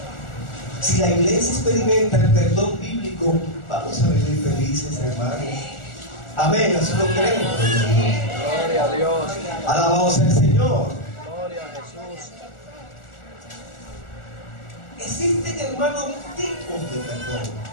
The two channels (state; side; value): late; right; 1.4 ms